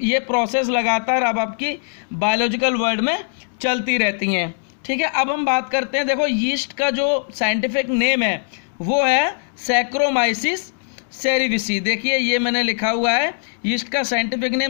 प्रोसेस लगातार अब आपकी बायोलॉजिकल वर्ल्ड में चलती रहती हैं। ठीक है, अब हम बात करते हैं, देखो यीस्ट का जो साइंटिफिक नेम है वो है सैक्रोमाइसिस सेरेविसी। देखिए ये मैंने लिखा हुआ है, यीस्ट का साइंटिफिक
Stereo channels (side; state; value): right; silent; digital silence